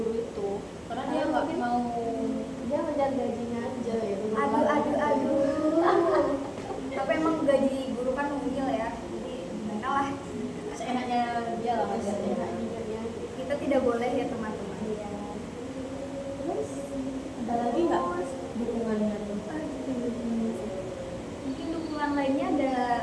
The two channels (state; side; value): identical; both; correlation 1.00